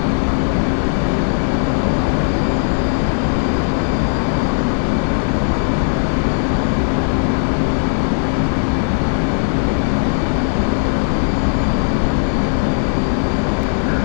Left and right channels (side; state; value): right; silent; digital silence